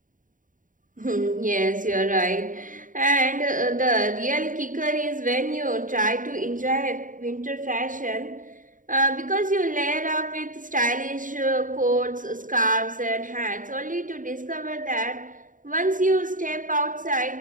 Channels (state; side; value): late; left; 0.38 ms